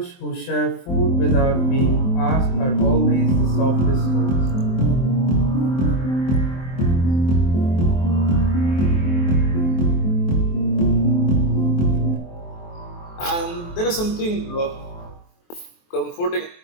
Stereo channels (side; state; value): right; late; 23 ms